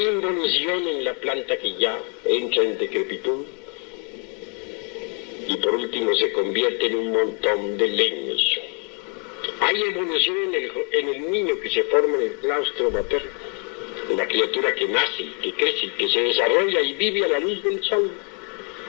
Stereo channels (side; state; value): right; quieter; 36.2 dB